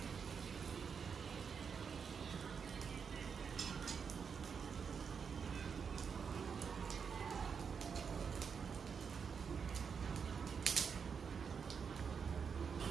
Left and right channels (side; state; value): left; quieter; 6.3 dB